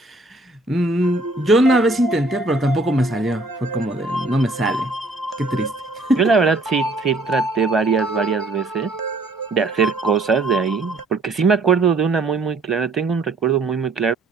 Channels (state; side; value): quieter; left; 3.0 dB